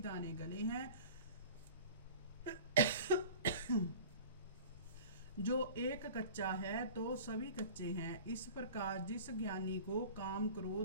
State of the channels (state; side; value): inverted; both; correlation -0.40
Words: गले हैं। जो एक कच्चा है तो सभी कच्चे हैं। इस प्रकार जिस ज्ञानी को काम